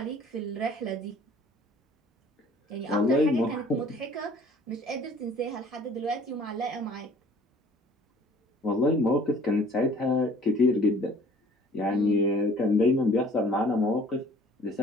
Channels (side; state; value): both; normal; correlation 0.52